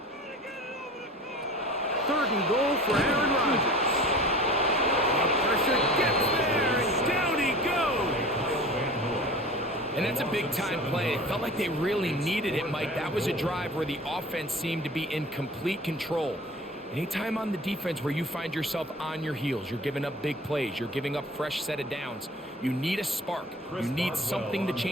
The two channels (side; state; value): both; normal; correlation 0.40